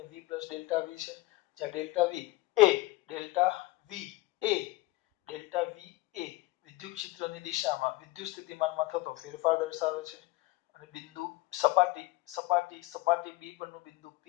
V પ્લસ ડેલ્ટા V છે, જ્યાં ડેલ્ટા V એ વિદ્યુત ક્ષેત્રની દિશામાં વિદ્યુત સ્થિતિમાનમાં થતો ફેરફાર દર્શાવે છે. અને બિંદુ સપાટી B પરનું બિંદુ P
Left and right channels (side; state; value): right; quieter; 19.4 dB